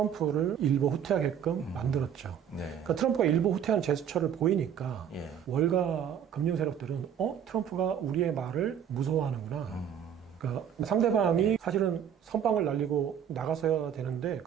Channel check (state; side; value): quieter; left; 8.7 dB